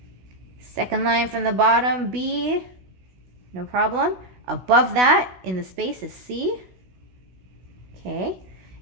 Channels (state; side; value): late; left; 16 ms